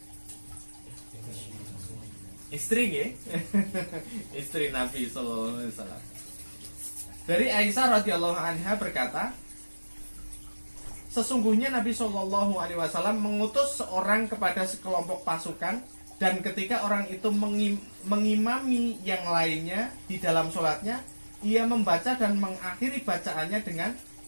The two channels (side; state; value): both; inverted; correlation -1.00